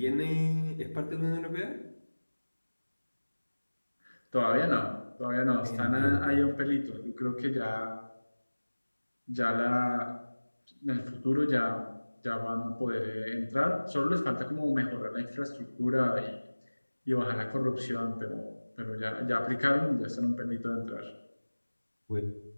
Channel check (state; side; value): inverted; both; correlation -1.00